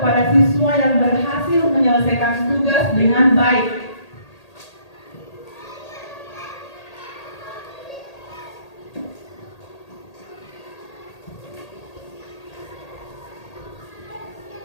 siswa yang berhasil menyelesaikan tugas dengan baik.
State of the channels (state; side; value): late; right; 1.8 ms